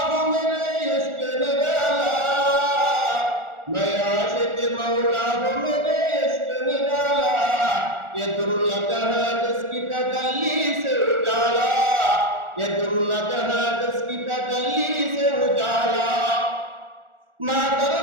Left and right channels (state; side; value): late; left; 1.4 ms